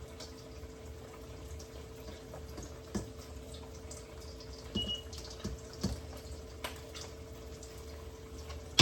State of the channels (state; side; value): identical; both; correlation 1.00